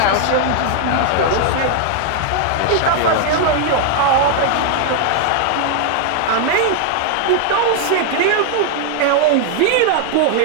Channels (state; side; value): different; both; correlation 0.00